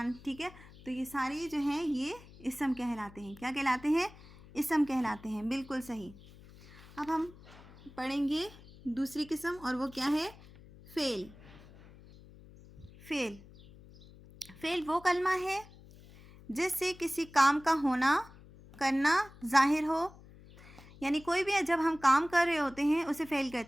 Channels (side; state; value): left; noise; hum, 21 dB below the sound